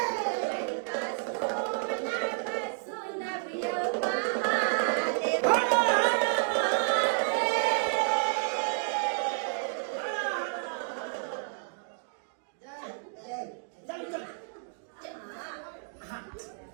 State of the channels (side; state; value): left; silent; digital silence